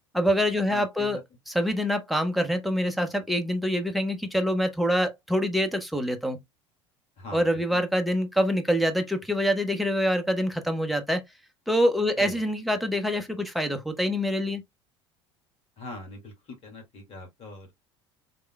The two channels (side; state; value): both; normal; correlation 0.84